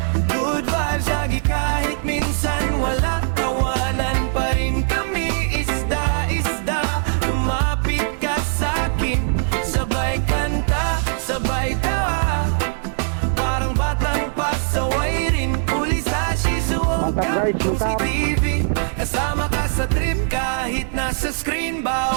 Good vibes lagi kahit minsan wala. Tawanan pa rin kami, isda-isda. Lumapit ka sa'kin, sabay kanta, sabay tawa. Parang batang pasaway rin. Huli sa Shizuoka, Chomsky TV. Kasama ka sa trip kahit nasa screen.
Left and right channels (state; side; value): silent; left; digital silence